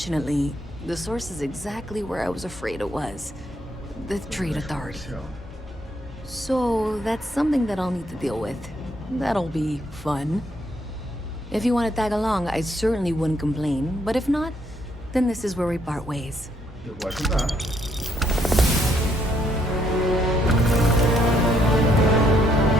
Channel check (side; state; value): both; normal; correlation 0.71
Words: the source is exactly where I was afraid it was. The Trade Authority. So that's something that I'll need to deal with. That'll be fun. If you want to tag along, I certainly wouldn't complain. But if not, then this is where we part ways. Eu vou ajudar.